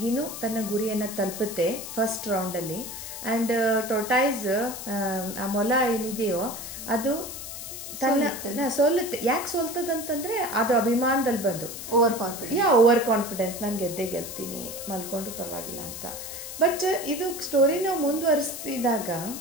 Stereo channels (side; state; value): left; noise; hiss, 9 dB below the sound